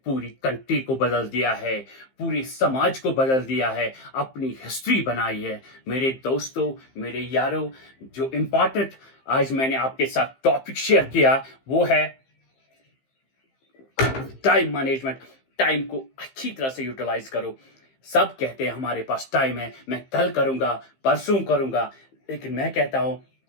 पूरी कंट्री को बदल दिया है, पूरे समाज को बदल दिया है, अपनी हिस्ट्री बनाई है। मेरे दोस्तों, मेरे यारों, जो इम्पोर्टेंट आज मैंने आपके साथ टॉपिक शेयर किया वो है टाइम मैनेजमेंट। टाइम को अच्छी तरह से यूटिलाइज करो। सब कहते हैं हमारे पास टाइम है, मैं कल करूंगा, परसों करूंगा, लेकिन मैं कहता हूं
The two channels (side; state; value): right; late; 15 ms